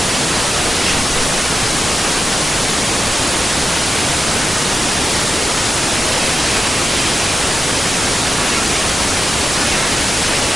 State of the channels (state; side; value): normal; both; correlation 0.92